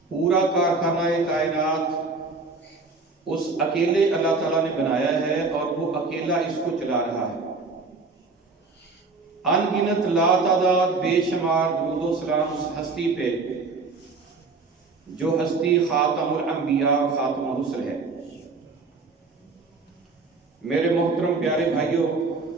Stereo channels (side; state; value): left; quieter; 4.0 dB